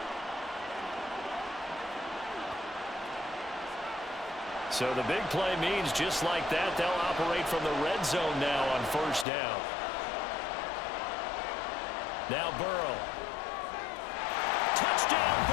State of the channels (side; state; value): right; drops out; at 9.2 s